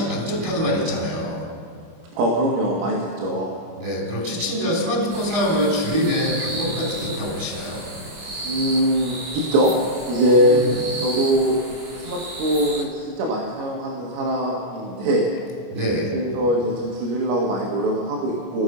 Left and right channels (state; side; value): late; left; 25 ms